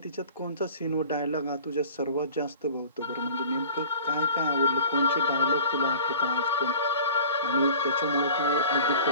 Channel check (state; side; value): inverted; both; correlation -0.44